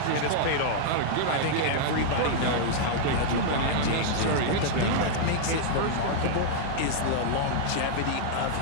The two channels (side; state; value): both; different; correlation -0.01